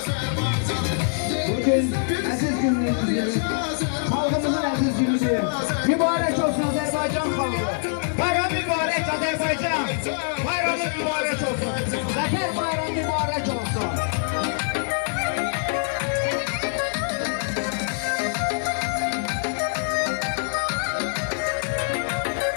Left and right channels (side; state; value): right; silent; digital silence